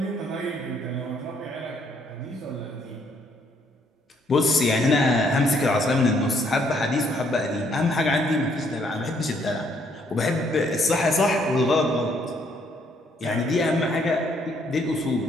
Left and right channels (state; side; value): normal; both; correlation 0.68